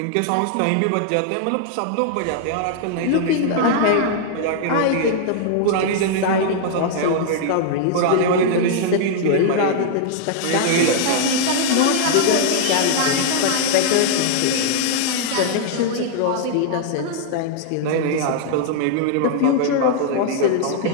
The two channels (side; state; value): both; different; correlation -0.01